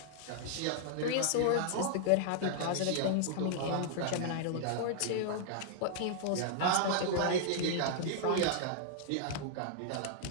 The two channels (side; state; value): both; different; correlation -0.01